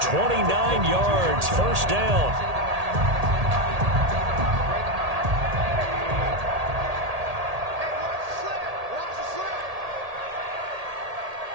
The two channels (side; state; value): left; late; 1.8 ms